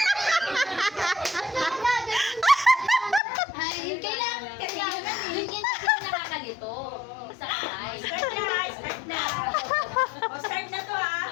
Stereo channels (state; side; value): drops out; right; at 3.2 s